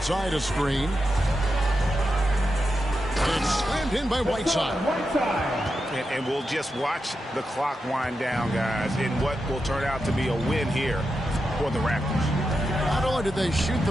side a screen. It's slammed in by Whiteside. And we'll just watch the clock wind down, guys, in what will turn out to be a win here for the Raptors. Not only did they shoot the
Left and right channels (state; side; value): normal; both; correlation 0.88